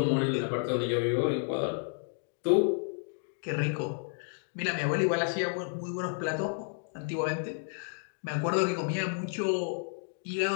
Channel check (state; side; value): silent; right; 57 dB below the other